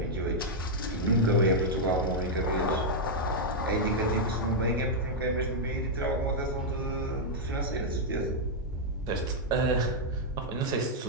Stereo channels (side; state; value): both; normal; correlation -0.04